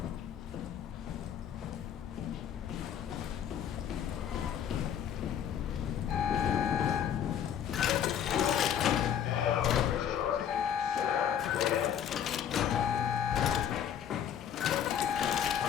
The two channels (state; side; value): quieter; right; 9.2 dB